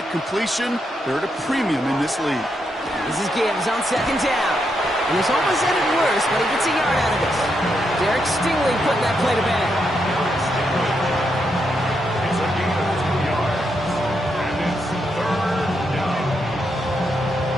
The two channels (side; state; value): both; normal; correlation 0.81